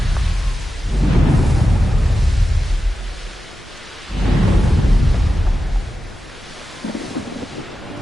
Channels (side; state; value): both; normal; correlation 0.92